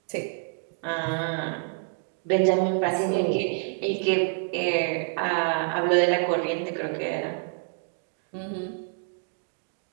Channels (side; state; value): left; silent; 60 dB below the other